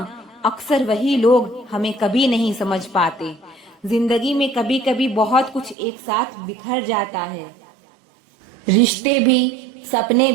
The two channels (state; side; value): drops out; left; at 5.8 s